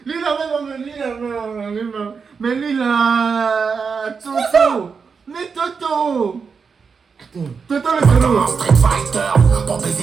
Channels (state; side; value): quieter; left; 5.5 dB